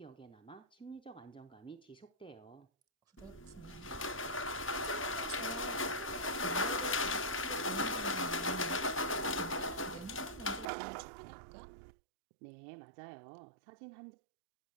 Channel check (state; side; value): drops out; left; at 10.7 s